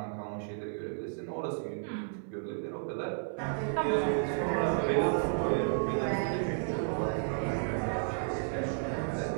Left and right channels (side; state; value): left; silent; 56 dB below the other